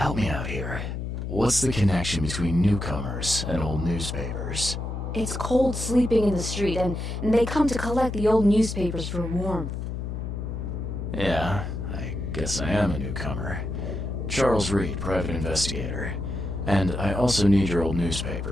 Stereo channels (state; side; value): noise; left; hum, 5 dB below the sound